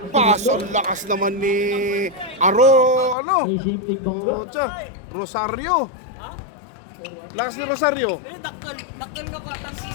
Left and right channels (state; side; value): drops out; right; at 3.2 s